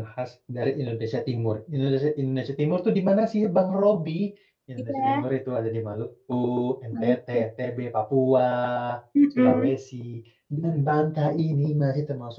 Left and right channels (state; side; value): identical; both; correlation 1.00